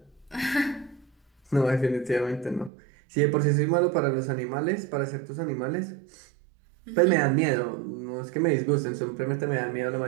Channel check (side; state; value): left; drops out; at 2.7 s